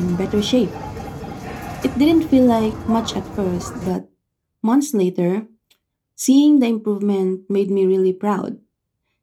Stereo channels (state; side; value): identical; both; correlation 1.00